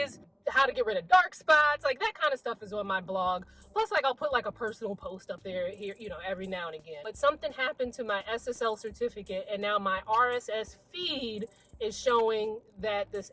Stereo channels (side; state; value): both; identical; correlation 1.00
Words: how to get rid of dark spots, like that kind of stuff is on my blog. Plus, like, I'll put like a personal post up there here, you know, every now and again. But something happened to my SSL certificate, and now my RSS feed is showing that this